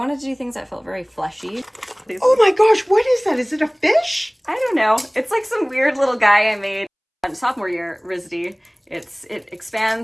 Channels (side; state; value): both; identical; correlation 1.00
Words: to do things that felt very fleshy. Oh my gosh, what is that? Is it a fish? I don't know. It's like some weird little guy I made sophomore year RISD. It